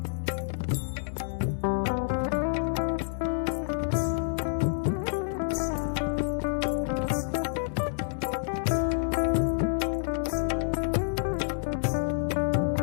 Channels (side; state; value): right; silent; digital silence